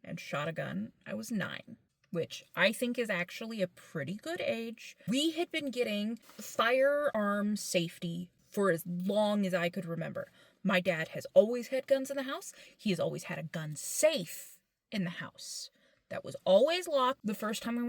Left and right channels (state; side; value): identical; both; correlation 1.00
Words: and shot a gun, I was 9. Which I think is actually a pretty good age. We had been getting firearm safety for as long as I could remember. My dad has always had guns in the house. He has always had a gun safe in the house that was always locked. The first time we